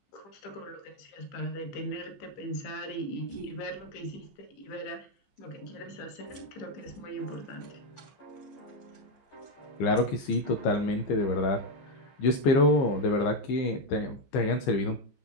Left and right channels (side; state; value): right; late; 15 ms